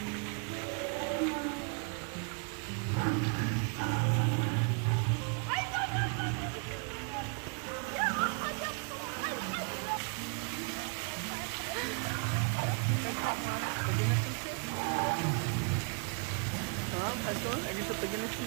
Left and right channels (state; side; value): quieter; left; 38.2 dB